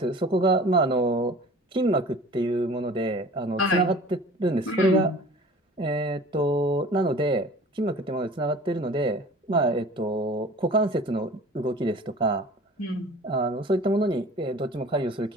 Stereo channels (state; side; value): normal; both; correlation 0.44